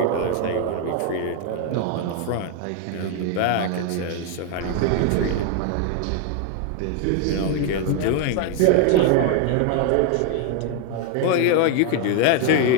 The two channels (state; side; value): different; both; correlation 0.01